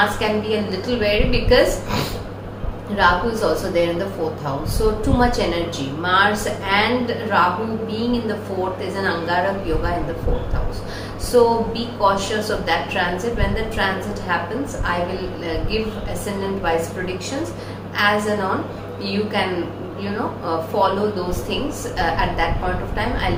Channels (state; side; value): identical; both; correlation 1.00